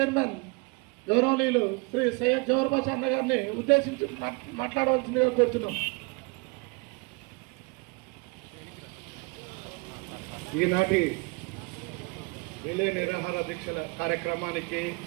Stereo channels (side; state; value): left; quieter; 29.6 dB